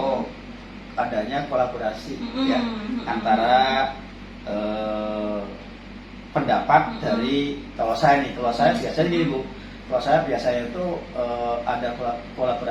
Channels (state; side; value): identical; both; correlation 1.00